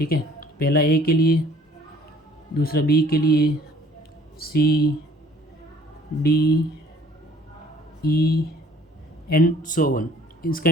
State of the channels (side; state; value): both; normal; correlation 0.55